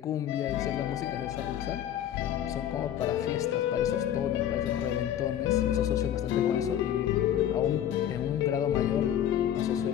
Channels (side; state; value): right; quieter; 10.7 dB